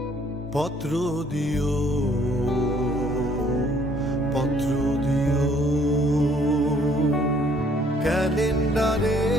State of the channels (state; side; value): normal; both; correlation 0.62